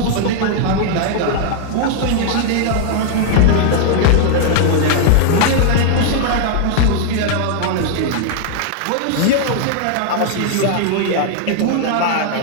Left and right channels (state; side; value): different; both; correlation 0.00